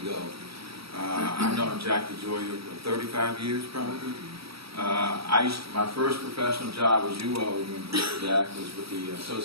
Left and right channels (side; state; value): left; late; 0.76 ms